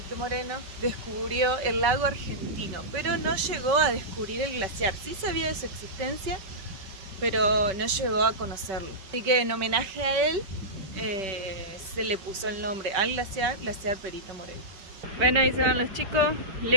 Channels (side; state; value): left; late; 5.2 ms